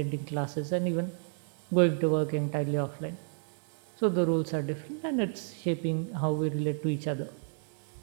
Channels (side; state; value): left; silent; 57 dB below the other